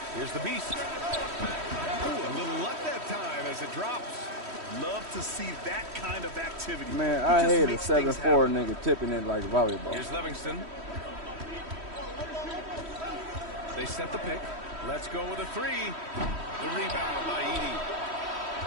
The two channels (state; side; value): late; left; 3.1 ms